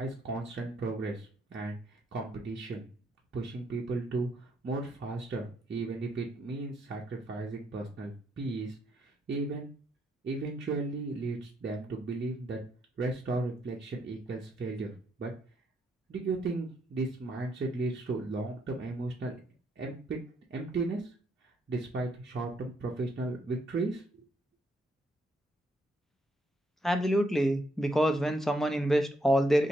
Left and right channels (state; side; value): normal; both; correlation 0.75